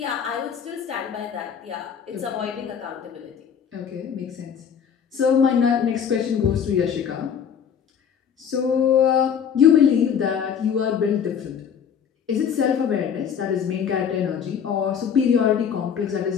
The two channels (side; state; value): right; quieter; 7.7 dB